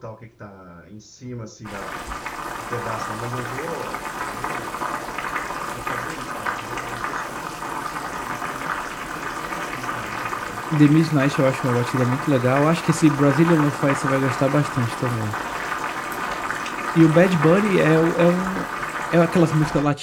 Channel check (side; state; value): both; identical; correlation 1.00